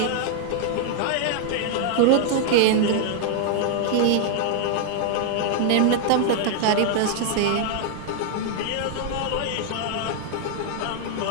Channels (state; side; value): different; both; correlation -0.01